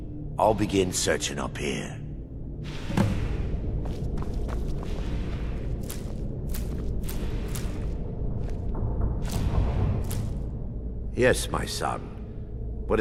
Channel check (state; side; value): identical; both; correlation 1.00